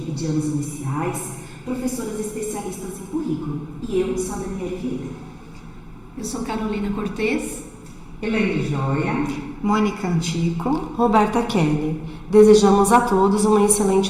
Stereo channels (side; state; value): both; identical; correlation 1.00